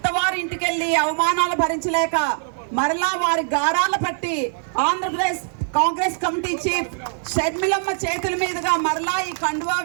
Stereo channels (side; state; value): left; silent; 62 dB below the other